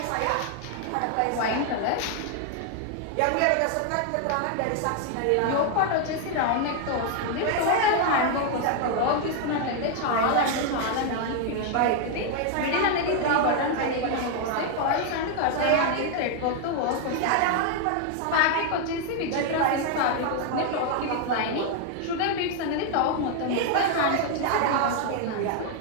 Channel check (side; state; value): both; different; correlation 0.00